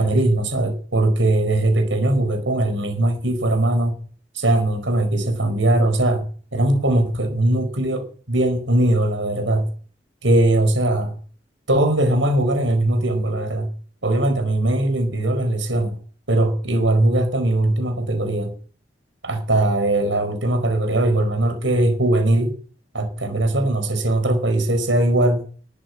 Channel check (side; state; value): both; normal; correlation 0.61